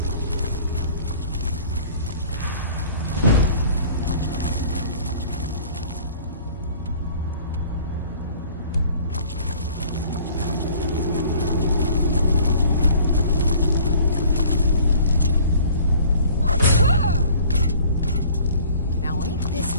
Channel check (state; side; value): inverted; both; correlation -0.51